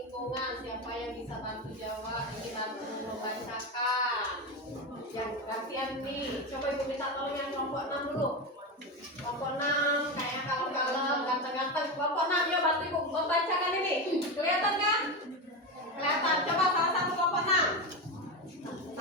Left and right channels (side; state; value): both; normal; correlation 0.16